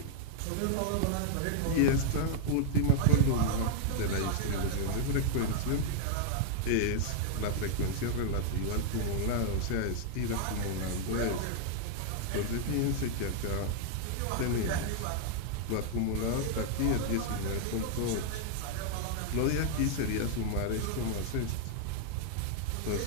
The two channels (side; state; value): both; different; correlation 0.00